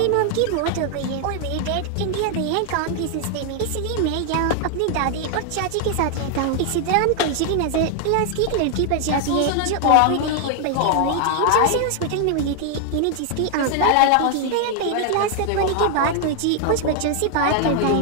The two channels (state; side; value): different; both; correlation 0.00